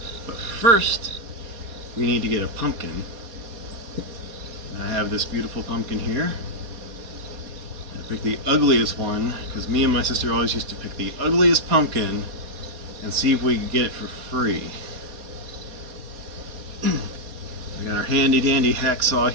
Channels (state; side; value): late; left; 4.2 ms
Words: But first we need to get a pumpkin. I have this beautiful pumpkin here. I picked the ugliest one because me and my sister always used to pick the ugliest pumpkin and see if we could get it for free. We got our handy dandy hacksaw